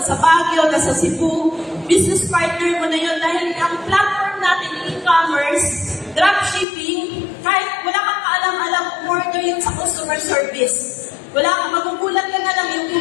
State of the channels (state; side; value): drops out; right; at 6.7 s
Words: Baguio, nasa Cebu, business partner mo na yun dahil ang platform natin, e-commerce, dropshipping, kahit wala kang kaalam-alam, order yun sa customer service. Wala kang magugulat ka na lang yung